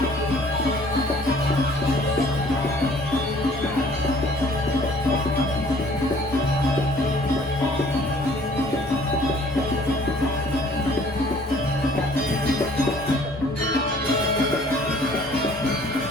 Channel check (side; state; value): both; normal; correlation 0.55